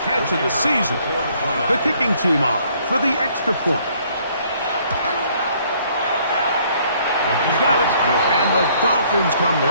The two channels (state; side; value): inverted; both; correlation -0.63